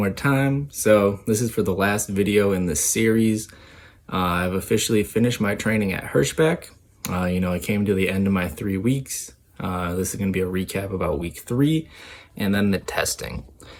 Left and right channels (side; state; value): both; identical; correlation 1.00